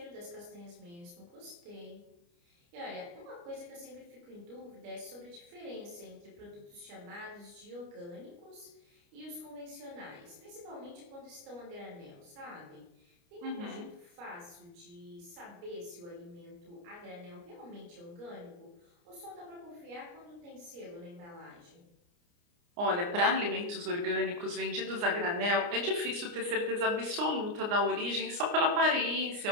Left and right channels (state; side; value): late; left; 29 ms